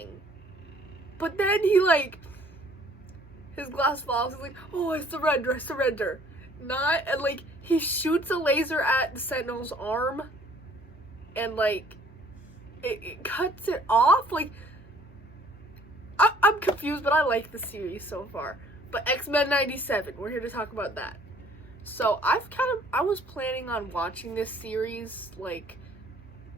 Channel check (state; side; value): normal; both; correlation 0.57